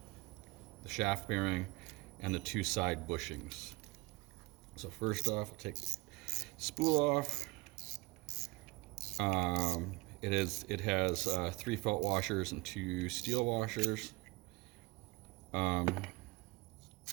the shaft bearing, and the two side bushings. So first off, I'll take the spool off. It has 3 felt washers and 2 steel washers. It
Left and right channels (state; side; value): quieter; left; 24.4 dB